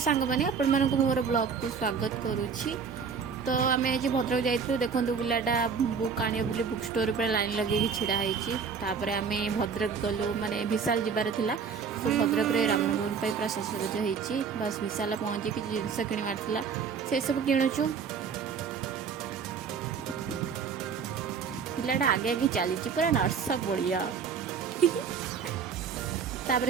मैंने आपण मानक मोर ब्लॉग को स्वागत करुच्ची। तो आम आज भद्रक जाइलु देखु पिलाटा बुक आने बोली बुक स्टोर पर लाइन लगे छिड़ा होपर आम भद्रक गलु माने विशाल जीवार थिला। सो भद्रक रे रामनवमी पूरा सजसज होती बस विशाल पहुँची कि जिनस किणवार थिला से सब किणुचु। पिलाटा आगे आगे चली पूरा नर्स बढ़िया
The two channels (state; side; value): quieter; left; 6.1 dB